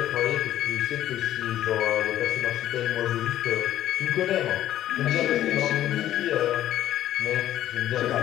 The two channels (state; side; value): quieter; right; 12.6 dB